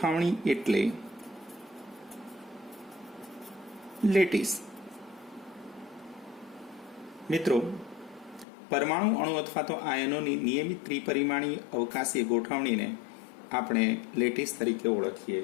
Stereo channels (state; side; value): drops out; right; at 8.5 s